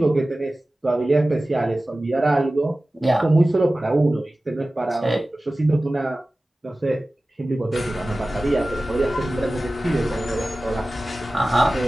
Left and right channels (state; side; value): normal; both; correlation 0.97